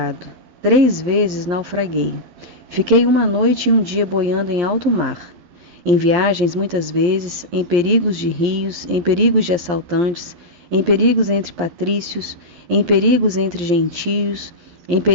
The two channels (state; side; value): late; left; 11 ms